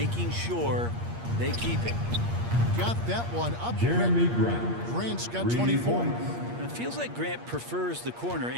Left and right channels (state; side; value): late; left; 8.5 ms